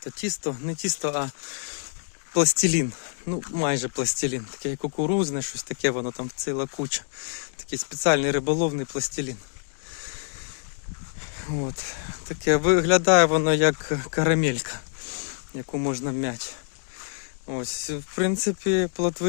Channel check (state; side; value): silent; right; digital silence